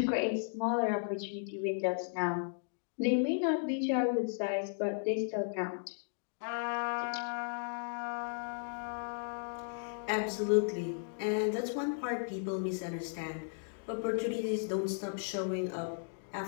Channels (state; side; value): silent; right; digital silence